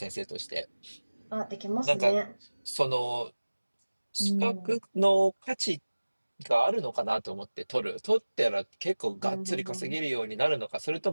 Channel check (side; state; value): both; inverted; correlation -1.00